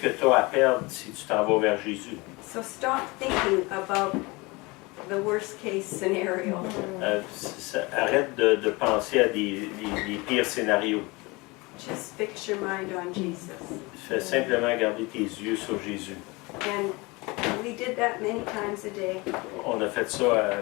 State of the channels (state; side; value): quieter; right; 24.8 dB